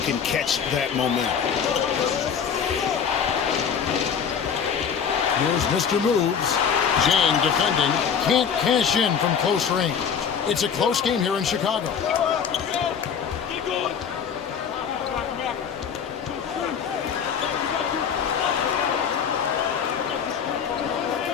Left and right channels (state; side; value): quieter; right; 7.2 dB